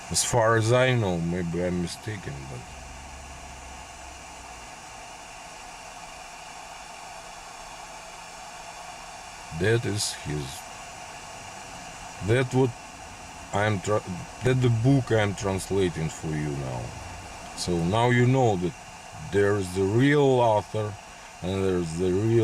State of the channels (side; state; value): both; identical; correlation 1.00